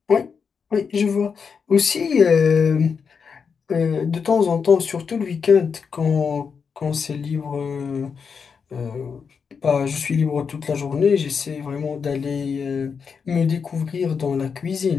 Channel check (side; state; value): right; quieter; 6.0 dB